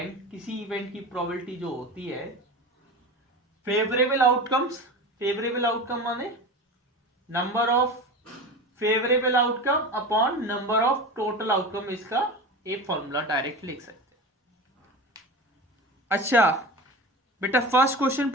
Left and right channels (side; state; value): both; normal; correlation 0.29